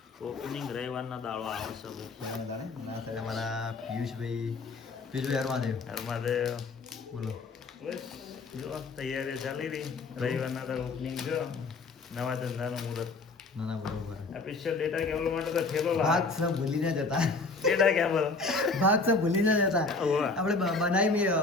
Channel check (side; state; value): right; quieter; 3.8 dB